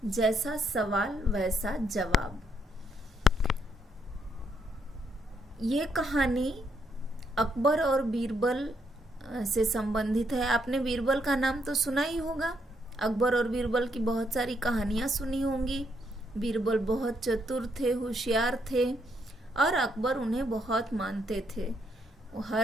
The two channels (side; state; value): both; normal; correlation 0.75